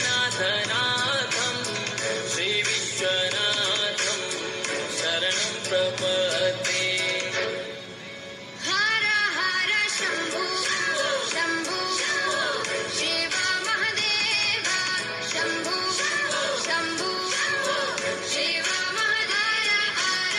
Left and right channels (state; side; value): identical; both; correlation 1.00